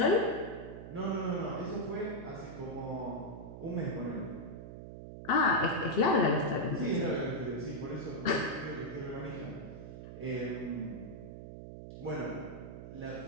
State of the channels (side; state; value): right; noise; hum, 11 dB below the sound